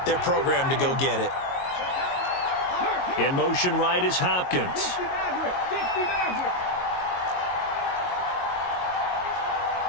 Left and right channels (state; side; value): late; right; 22 ms